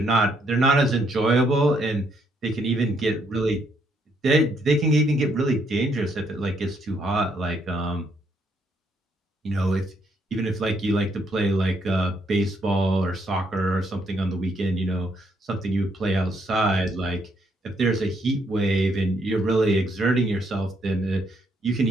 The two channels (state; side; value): normal; both; correlation 0.72